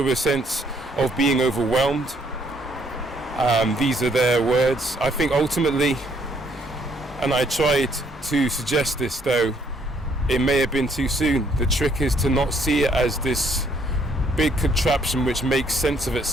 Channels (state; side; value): normal; both; correlation 0.68